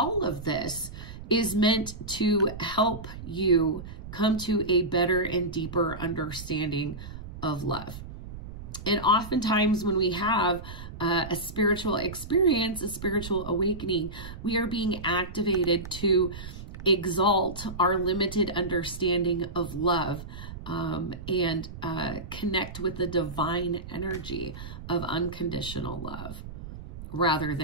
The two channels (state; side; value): noise; right; rumble, 11 dB below the sound